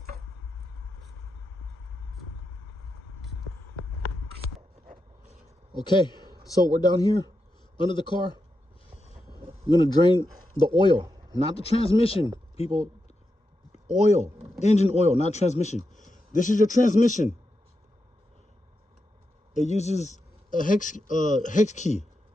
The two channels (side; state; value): both; normal; correlation 0.87